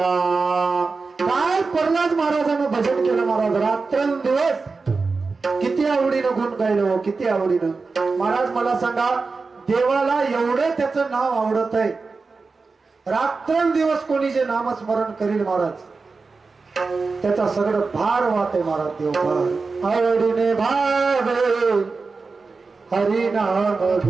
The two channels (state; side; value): quieter; left; 4.2 dB